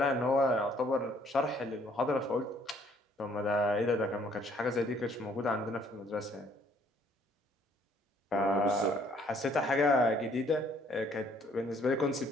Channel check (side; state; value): both; normal; correlation 0.63